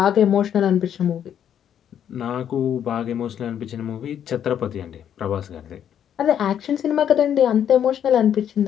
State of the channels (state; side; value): quieter; right; 9.4 dB